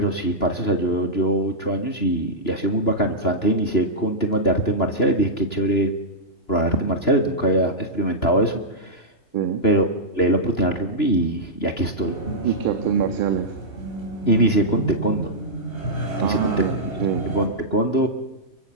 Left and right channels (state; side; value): late; right; 2.9 ms